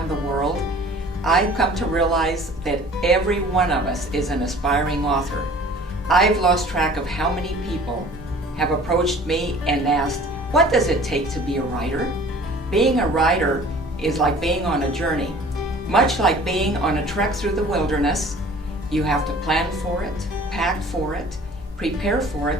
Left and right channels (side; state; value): both; normal; correlation 0.48